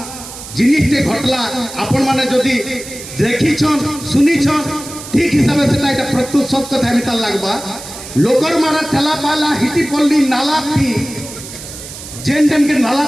जिनिसटे घटला आपण माने जदी देखी छन सुनी छन ठीक हिसाब से এটা প্রত্যুত সত্য কথা মিটাল লাগবা লোকর মারা ঠেলা পালা হিটি পল্লী নালা থি जेन डेम के नाला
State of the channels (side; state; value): right; noise; hiss, 13 dB below the sound